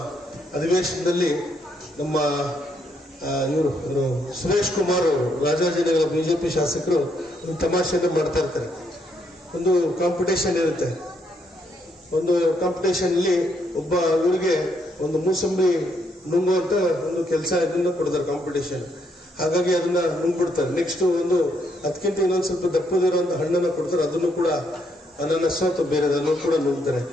ಅಧಿವೇಶನದಲ್ಲಿ ನಮ್ಮ ಇವರು ಸುರೇಶ್ ಕುಮಾರ್ ಅವರು ರಾಜಾಜಿನಗರ ಬಿಜೆಪಿ ಶಾಸಕರು ಒಂದು ತಮಾಷೆಯನ್ನು ಮಾಡ್ತಾ ಇರ್ತಾರೆ. ಒಂದು ಕಾಂಪಿಟೇಷನ್ ಇರುತ್ತೆ. ಒಂದು ಕಾಂಪಿಟೇಷನ್ ಅಲ್ಲಿ ಒಬ್ಬ ಇವರಿಗೆ ಒಂದು ಮೂಸಂಬಿ ನುಂಗುವಂತ ಒಂದು ಕೆಲಸ ಇದನ್ನ ಕೊಡ್ತಾರೆ ಕಾಂಪಿಟೇಷನ್. ಹಾಗಾಗಿ ಅದನ್ನ ನುಂಗ್ಬಿಡ್ತಾರೆ. ನೆಕ್ಸ್ಟ್ ಒಂದು ಅದಕ್ಕಿಂತ ಇನ್ನೊಂದು ಸ್ವಲ್ಪ ದಪ್ಪದಿರುವಂತ ಹಣ್ಣನ್ನ ಕೊಡ್ತಾರೆ, ಅದನ್ನು ಕೂಡ ಅನಾನಸ್ ಅಥವಾ ಬೇರೆ ಅದನ್ನು ಕೂಡ ನುಂಗ್ತಾರೆ.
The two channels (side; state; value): both; normal; correlation 0.74